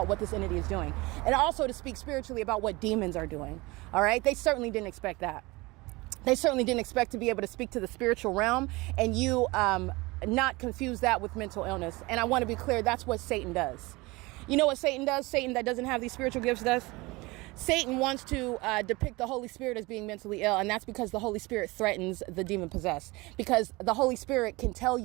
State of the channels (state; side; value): quieter; left; 23.0 dB